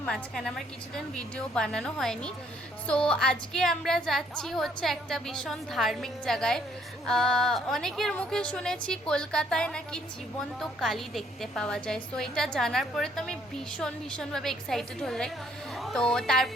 মাঝখানে আমার কিছুদিন ভিডিও বানানো হয়নি। সো আজকে আমরা যাচ্ছি হচ্ছে একটা ভীষণ ধার্মিক জায়গায়। অনেকের মুখে শুনেছি কলকাতায় নাকি জীবন্ত কালী দেখতে পাওয়া যায়। সো এটা জানার পরে তো আমি ভীষণভাবে এক্সাইটেড হয়ে যাই। তো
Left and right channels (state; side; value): normal; both; correlation 0.66